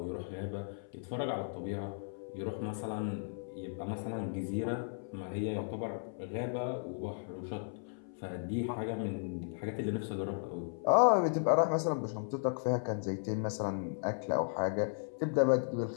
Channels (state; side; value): silent; right; 54 dB below the other